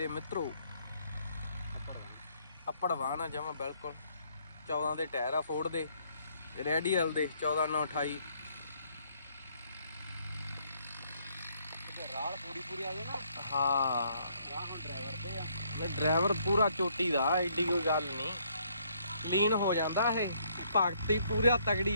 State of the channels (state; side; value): inverted; both; correlation -0.68